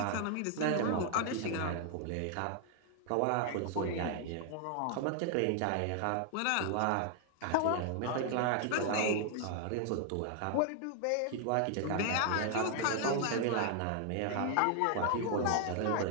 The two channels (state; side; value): different; both; correlation 0.00